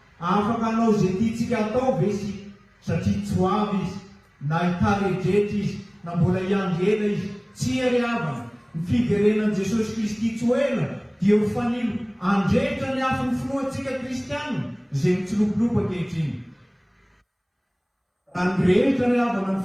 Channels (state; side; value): identical; both; correlation 1.00